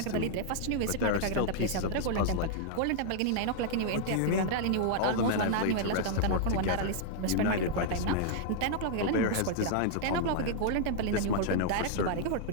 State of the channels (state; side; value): different; both; correlation -0.01